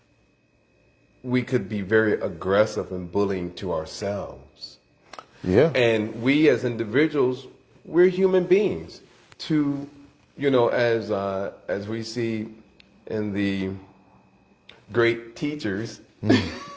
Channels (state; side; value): identical; both; correlation 1.00